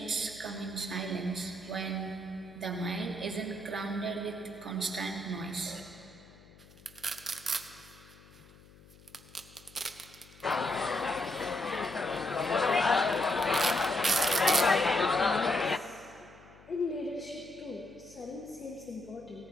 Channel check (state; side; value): noise; left; hum, 23 dB below the sound